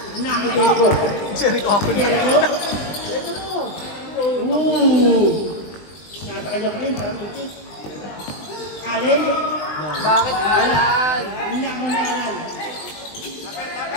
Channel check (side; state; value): right; late; 20 ms